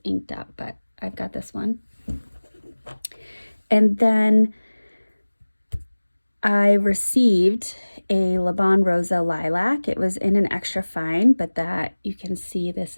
inked up, but I've got this one. And then I received a Le Bon Rosa Lilac. It was in an extra fine, but that you can see this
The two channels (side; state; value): both; inverted; correlation -1.00